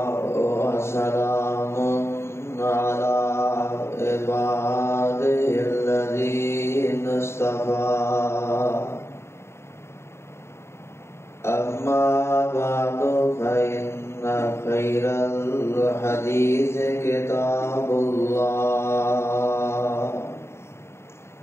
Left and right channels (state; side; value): late; right; 0.13 ms